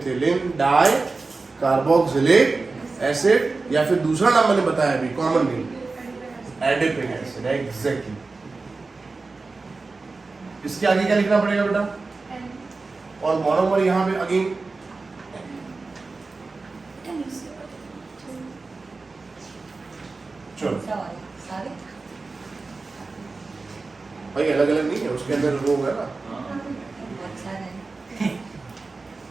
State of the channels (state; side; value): quieter; left; 3.8 dB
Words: di carboxylic acid, या फिर दूसरा नाम मैंने बताया अभी, common name adipic acid. Exactly. इसके आगे क्या लिखना पड़ेगा बेटा? और मोनोमर यहां पे अगेन चलो सारे भाई अलग अलग नहीं है, उसके अंदर वो है ना। बहुत सारे हैं।